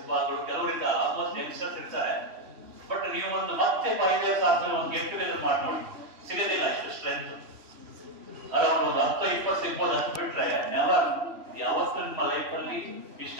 ಕೆಲವರಿಂದ ಆಲ್ಮೋಸ್ಟ್ ಯಂಗ್ಸ್ಟರ್ಸ್ ಇರ್ತಾರೆ. ಬಟ್ ನೀವು ಒಂದು ಮತ್ತೆ 5 years ಆದ್ಮೇಲೆ ಒಂದು ಗೆಟ್ ಟುಗೆದರ್ ಮಾಡಿ ನೋಡಿ, ಸಿಗೋದಿಲ್ಲ ಇಷ್ಟು ಸ್ಟ್ರೆಂತ್. ಅರೌಂಡ್ ಒಂದು 10-20 ಸಿಗ್ಬೋದು, ಅಷ್ಟು ಬಿಟ್ರೆ ನೆವರ್ ಯಾವತ್ತೂ ನಿಮ್ಮ ಲೈಫ್ ಅಲ್ಲಿ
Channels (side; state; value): left; late; 3.2 ms